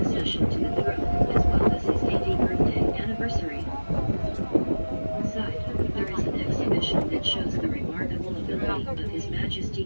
accession to the throne, as well as his 80th birthday anniversary. Inside, there is an exhibition that shows the remarkable ability of His Majesty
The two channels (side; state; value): both; inverted; correlation -1.00